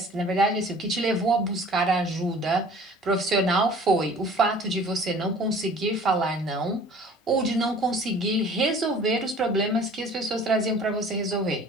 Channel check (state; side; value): normal; both; correlation 0.49